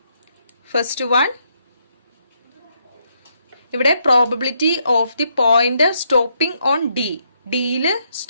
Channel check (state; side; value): inverted; both; correlation -0.75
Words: First one, ഇവിടെ probability of the pointer stopping on D. ഡിയിൽ